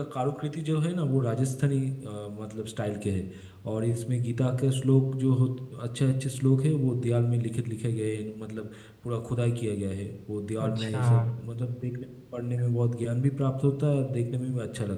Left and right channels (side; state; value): both; identical; correlation 1.00